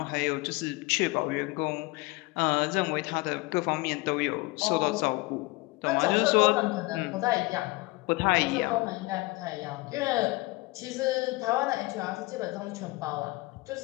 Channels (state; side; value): quieter; right; 23.0 dB